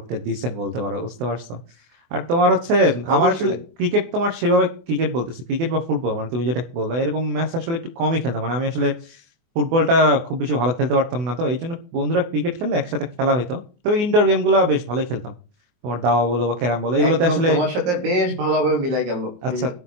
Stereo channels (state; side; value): late; left; 24 ms